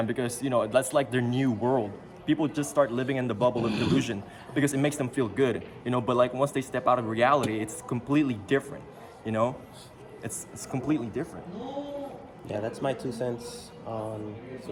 because, that's like their new world. People just start living in the bubble of delusion because it makes them feel good, but like once they step out of reality, it's completely different, It's completely different. Yeah, that's my 2 cents on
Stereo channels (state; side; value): identical; both; correlation 1.00